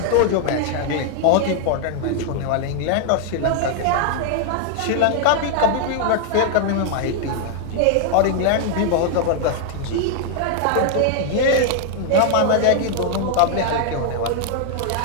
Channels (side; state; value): both; different; correlation 0.00